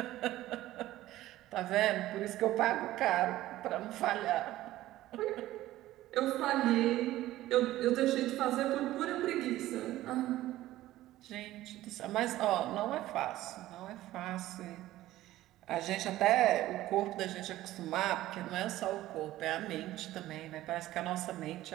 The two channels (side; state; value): left; quieter; 15.3 dB